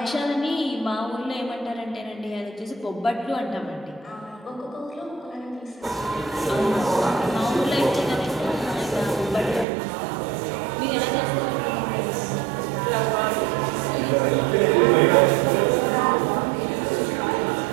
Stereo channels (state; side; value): drops out; left; at 9.7 s